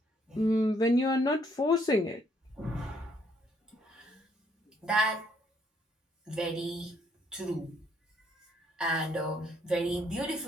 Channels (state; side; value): normal; both; correlation 0.69